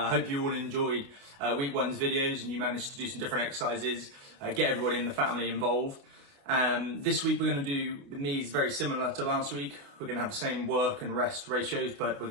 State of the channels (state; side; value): late; left; 28 ms